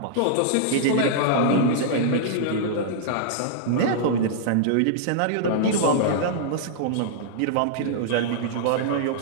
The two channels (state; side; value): different; both; correlation -0.01